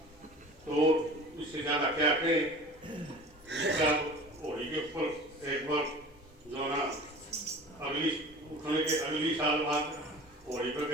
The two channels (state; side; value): normal; both; correlation 0.40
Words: तो इससे ज्यादा क्या करें। होली के ऊपर एक बार जो ना अगली साल बाद होली पर